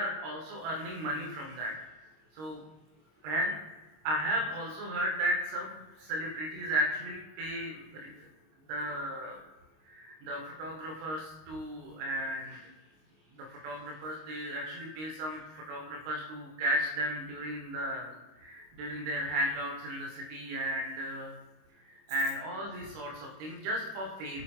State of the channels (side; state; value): left; late; 26 ms